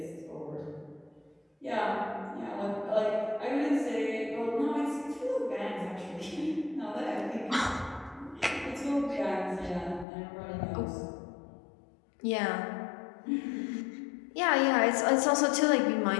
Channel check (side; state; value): right; drops out; at 10.1 s